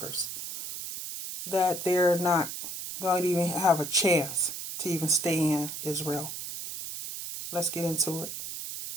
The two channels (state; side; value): noise; right; hiss, 7 dB below the sound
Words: That they're not going to even have a chance to even stay in Israel. Let's get into it.